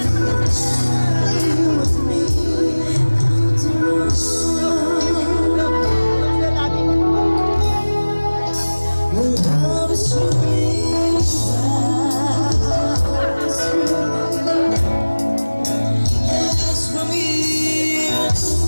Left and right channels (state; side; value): inverted; both; correlation -1.00